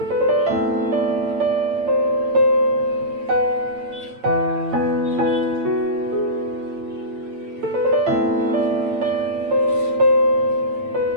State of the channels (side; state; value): left; late; 8.7 ms